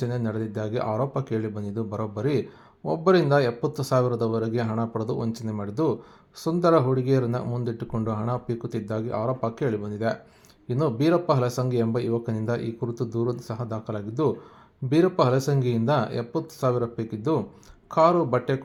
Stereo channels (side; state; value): both; identical; correlation 1.00